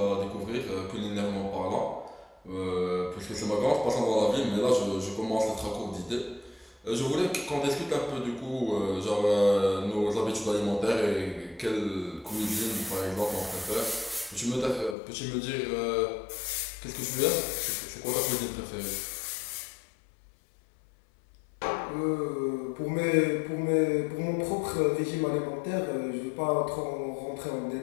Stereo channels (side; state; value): right; drops out; at 15.0 s